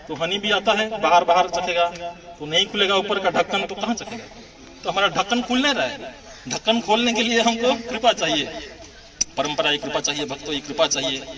तो हनी भी आता है, बाहर बाहर चखेगा तो नहीं खुलेगा ऊपर का ढक्कन, तो कहाँ चखेगा। तो हमारा ढक्कन खुल नहीं रहा है। ढक्कन खोलने के लिए हमको कृपा चाहिए, परंपरा की कृपा चाहिए, भक्तों की कृपा चाहिए,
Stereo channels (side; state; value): both; identical; correlation 1.00